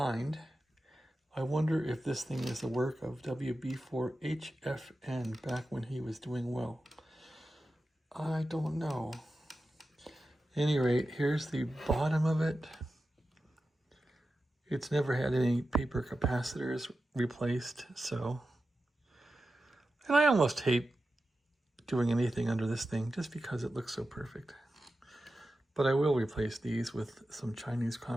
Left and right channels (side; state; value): both; normal; correlation 0.92